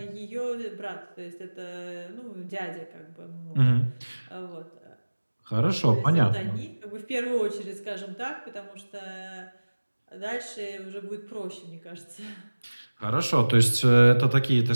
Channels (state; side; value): inverted; both; correlation -1.00